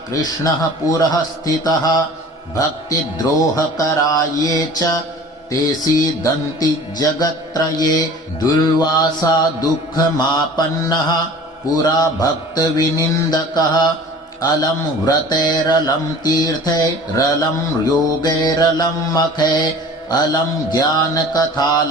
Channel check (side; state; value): both; normal; correlation 0.43